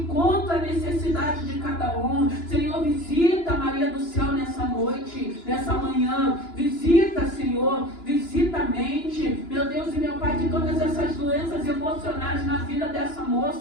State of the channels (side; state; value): right; late; 2.9 ms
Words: à necessidade de cada um. Senhor, visita Maria do Céu nessa noite, nessa manhã, visita, Senhor, visita a mente, meu Deus e meu Pai, que todas essas doenças emocionais na vida dessa